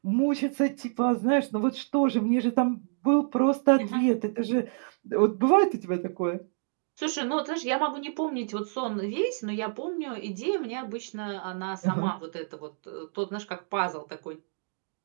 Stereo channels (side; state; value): left; silent; digital silence